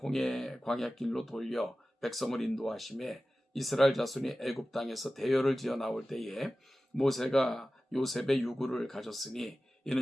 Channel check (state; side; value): normal; both; correlation 0.95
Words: 광야길로 돌려 백성을 인도하심에 이스라엘 자손이 애굽 땅에서 대열을 지어 나올 때에 모세가 요셉의 유구를 가졌으니